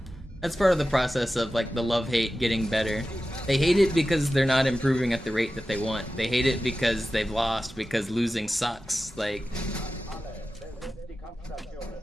That's part of the process of like the love-hate getting better. They hate it because they're not improving at the rate that they want. They hate it because they've lost, because losing sucks. Like,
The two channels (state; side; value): normal; both; correlation 0.94